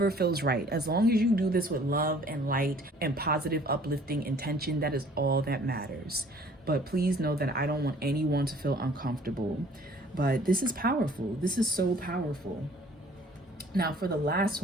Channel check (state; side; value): normal; both; correlation 0.54